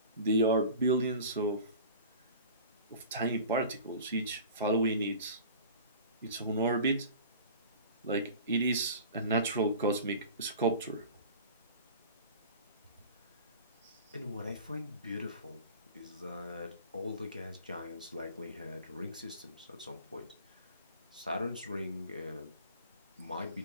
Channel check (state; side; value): inverted; both; correlation -0.39